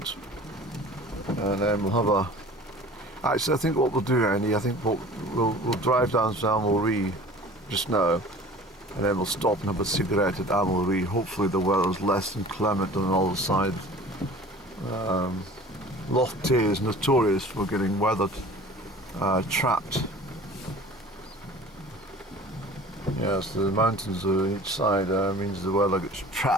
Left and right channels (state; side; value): normal; both; correlation 0.44